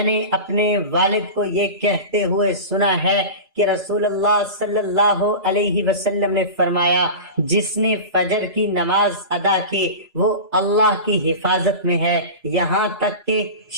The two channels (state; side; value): late; left; 3.0 ms